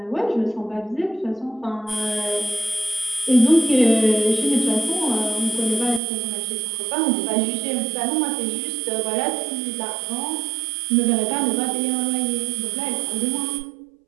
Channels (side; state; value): left; drops out; at 6.0 s